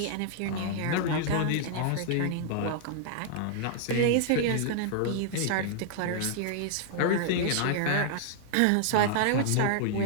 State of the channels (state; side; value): different; both; correlation -0.01